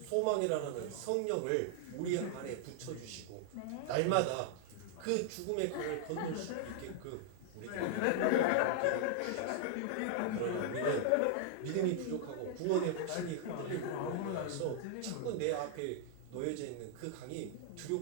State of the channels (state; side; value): different; both; correlation -0.01